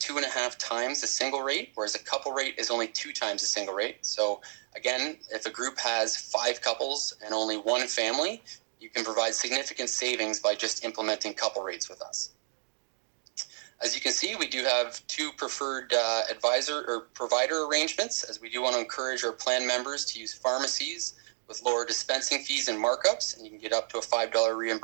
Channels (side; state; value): left; silent; digital silence